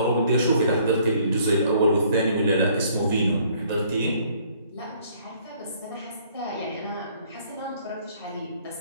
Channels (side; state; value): both; inverted; correlation -0.61